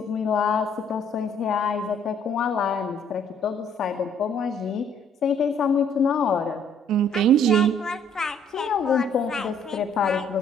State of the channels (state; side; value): normal; both; correlation 0.62